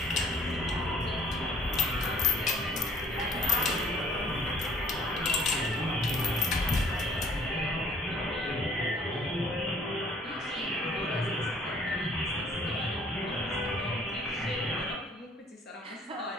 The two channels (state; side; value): normal; both; correlation 0.57